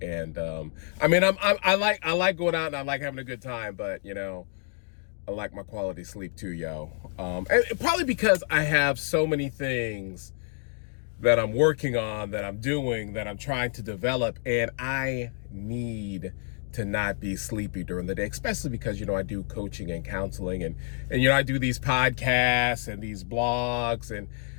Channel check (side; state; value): right; silent; 59 dB below the other